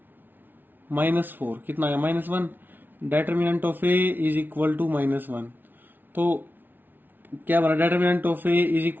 माइनस 4 कितना आया -1, determinant of A is equal to -1। तो क्या बना, determinant of A is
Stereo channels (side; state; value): left; late; 0.091 ms